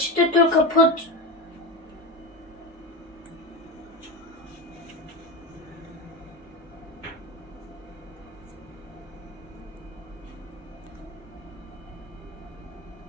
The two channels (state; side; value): normal; both; correlation 0.21